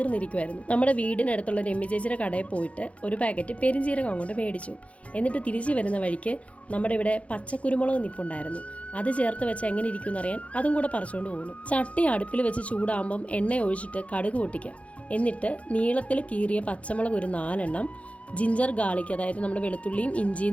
നമ്മുടെ വീടിനടുത്തുള്ള രമ്യ ചേച്ചിയുടെ കടയിൽ പോയിട്ട് ഒരു പാക്കറ്റ് പെരിഞ്ജീരകം അങ്ങോട്ട് മേടിച്ചു. എന്നിട്ട് തിരിച്ചു വരുന്ന വഴിക്ക് നമ്മുടെ ഇവിടെ പച്ചക്കുരുമുളക് നിപ്പുണ്ടായിരുന്നു. അത് ചേർത്ത് വെച്ച് എങ്ങനെ ഇരിക്കും എന്നറിയാൻ അതും കൂടെ പറിച്ചുകൊണ്ട് പോകുന്നു. ചട്ടി അടുപ്പിൽ വെച്ച് ചൂടാകുമ്പം എണ്ണ ഒഴിച്ചിട്ട് കടുക് പൊട്ടിക്കുക. എന്നിട്ട് നീളത്തിൽ കീറിയ പച്ചമുളക് ഒരു 4 എണ്ണം, ജിഞ്ചർ ഗാർലിക് അതായത് നമ്മുടെ വെളുത്തുള്ളിയും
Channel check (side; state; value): right; late; 0.064 ms